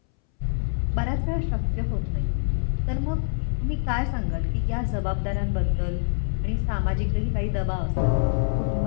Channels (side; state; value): right; silent; 62 dB below the other